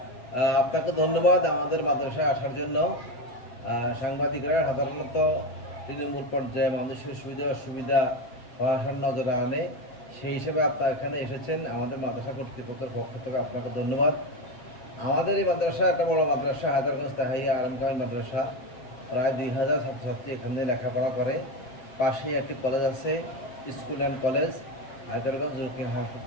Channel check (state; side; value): late; right; 8.0 ms